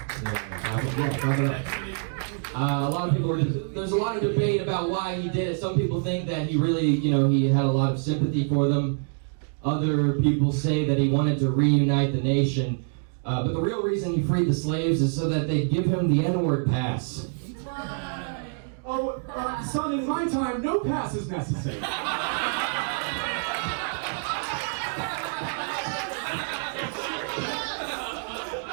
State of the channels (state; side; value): silent; left; 61 dB below the other